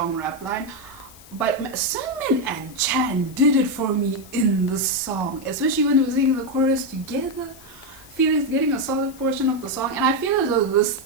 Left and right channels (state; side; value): noise; left; hiss, 22 dB below the sound